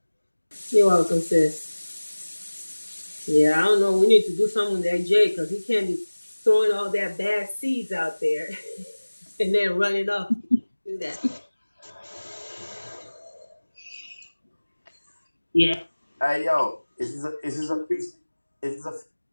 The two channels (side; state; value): both; inverted; correlation -1.00